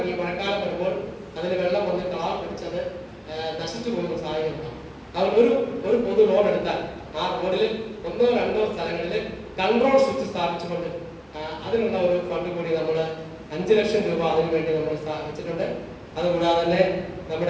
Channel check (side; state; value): both; identical; correlation 1.00